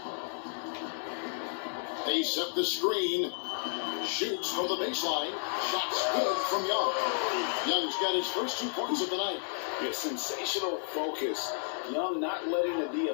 They set the screen. Shoots from the baseline. Shots good from Young. Young's got his first 2 points of the night. Yeah, sensational focus. Young not letting the D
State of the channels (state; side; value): silent; right; digital silence